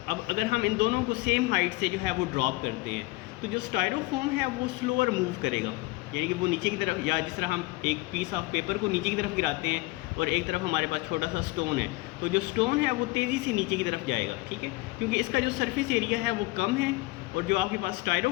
अगर हम इन दोनों को सेम हाइट से जो है वो ड्रॉप करते हैं तो जो स्टायरोफोम है वो स्लोअर मूव करेगा, यानी कि वो नीचे की तरफ, या जिस तरह हम एक पीस ऑफ पेपर को नीचे की तरफ गिराते हैं और एक तरफ हमारे पास छोटा सा स्टोन है, तो जो स्टोन है वो तेज़ी से नीचे की तरफ जाएगा, ठीक है, क्योंकि इसका जो सरफेस एरिया है वो कम है और जो आपके पास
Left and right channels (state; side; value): quieter; right; 21.6 dB